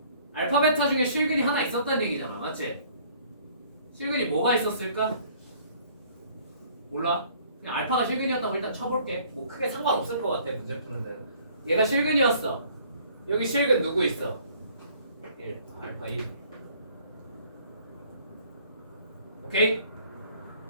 알파 베타 중에 실근이 하나 있었다는 얘기잖아. 맞지? 실근이 뭐가 있었을까? 몰라. 그냥 알파가 실근이었다고 일단 쳐볼게. 뭐 크게 상관없을 것 같아 문제 푸는 대로. 얘가 실근이었어. 여기 실근 누구 있어? 1. 알파 1. 오케이?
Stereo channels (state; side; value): inverted; both; correlation -0.57